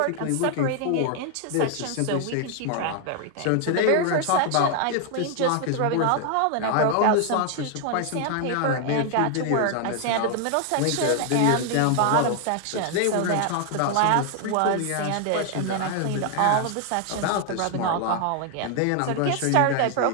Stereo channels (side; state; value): both; different; correlation 0.00